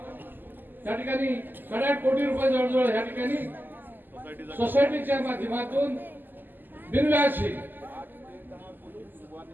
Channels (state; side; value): late; left; 0.090 ms